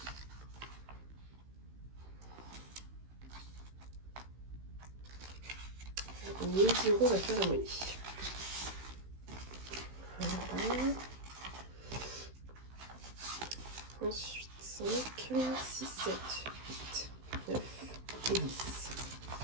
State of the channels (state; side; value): late; left; 16 ms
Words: On met 10 €, on va faire la monnaie. Voilà. Ensuite, 5, 6, 7, 8, 9 et 10.